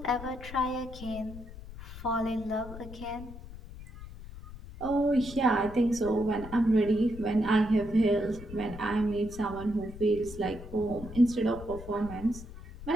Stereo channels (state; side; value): noise; left; rumble, 14 dB below the sound